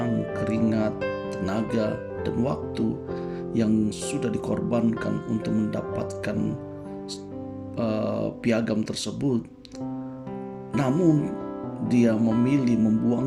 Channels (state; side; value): identical; both; correlation 1.00